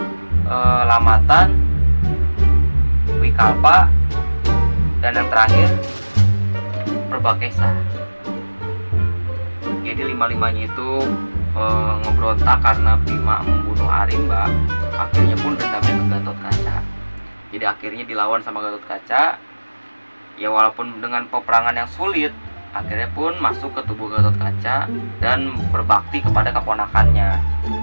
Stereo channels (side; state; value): both; inverted; correlation -1.00